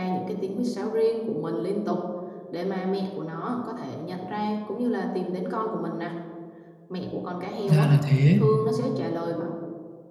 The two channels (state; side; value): identical; both; correlation 1.00